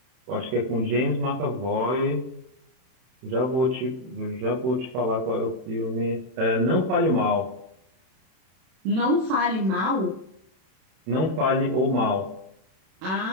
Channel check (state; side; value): late; left; 32 ms